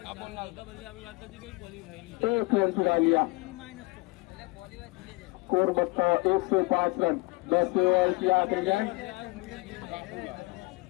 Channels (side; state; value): right; quieter; 25.7 dB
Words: 1 रन चुरा लिया स्कोर बढ़ता हुआ 105 रन 10 ओवर की आखिरी गेंद